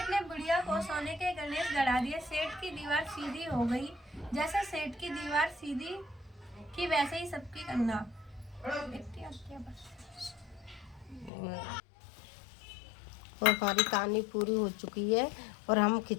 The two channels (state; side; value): drops out; right; at 11.3 s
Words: ने बुढ़िया को सोने के गणेश गढ़ा दिए। सेठ की दीवार सीधी हो गई। जैसे सेठ की दीवार सीधी की वैसे ही सबकी करना। और हमारी कहानी पूरी हो चुकी है और हम